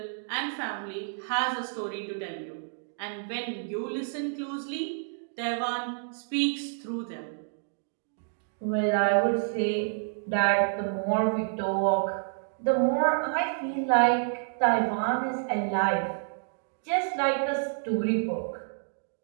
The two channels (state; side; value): silent; left; digital silence